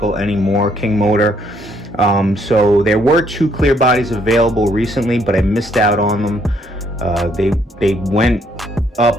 anymore, King Motor. So there were 2 clear bodies available recently, but I missed out on them. They went up,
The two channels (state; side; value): normal; both; correlation 0.69